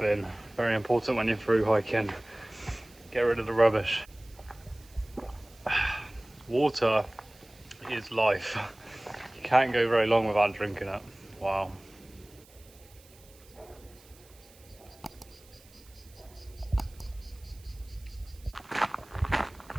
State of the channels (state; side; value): noise; right; hiss, 25 dB below the sound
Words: Very important when you're through hiking. Get rid of the rubbish. Water is life. You can't go very long without drinking it. Wow.